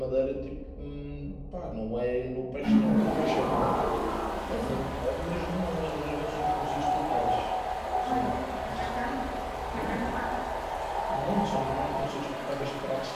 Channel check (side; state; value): both; identical; correlation 1.00